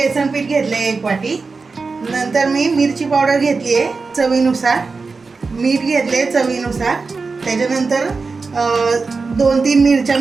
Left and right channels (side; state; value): left; quieter; 4.3 dB